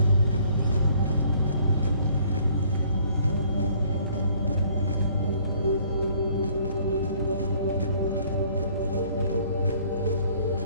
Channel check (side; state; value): both; inverted; correlation -0.59